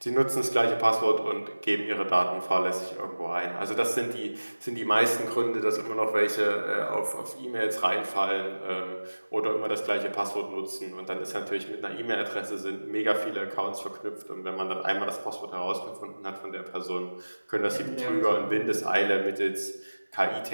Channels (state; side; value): inverted; both; correlation -1.00